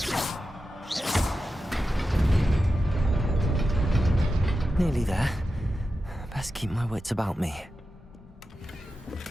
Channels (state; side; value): normal; both; correlation 0.91